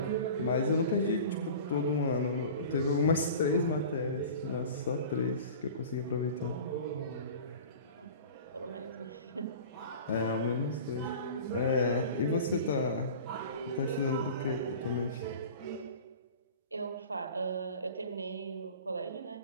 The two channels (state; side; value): inverted; both; correlation -0.38